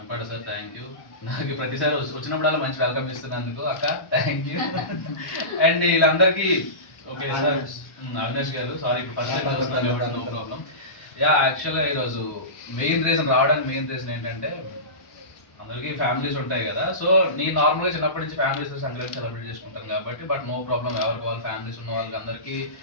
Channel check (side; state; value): right; late; 1.1 ms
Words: సార్ థ్యాంక్ యూ. నాకు ప్రతిసారి వచ్చినప్పుడల్లా మంచి వెల్కమ్ ఇస్తున్నందుకు అక్క థ్యాంక్ యూ. అండ్ వీళ్ళందరికీ ఓకే సార్ అవినాష్ గారు సారీ ఇప్పుడు ఫస్ట్ టైం వస్తున్నాను, నో ప్రాబ్లం. యాక్చువల్గా ఈరోజు మెయిన్ రీజన్ ఏంటంటే అందరికీ ఫ్యామిలీస్ ఉంటాయి కదా. సో నేను నార్మల్గా చిన్నప్పటి నుంచి ఫ్యామిలీస్ సంక్రాంతి సెలబ్రేట్ చేసుకుంటాను కాబట్టి బట్ నో ప్రాబ్లం, ఎవరికి వాళ్ళు ఫ్యామిలీస్ ఉన్న వాళ్ళకి అందరికీ